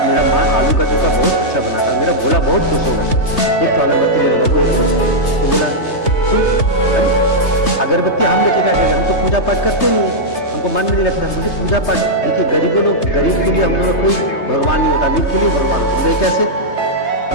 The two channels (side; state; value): right; late; 3.3 ms